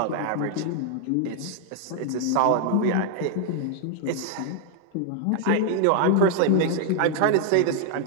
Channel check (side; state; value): both; different; correlation 0.00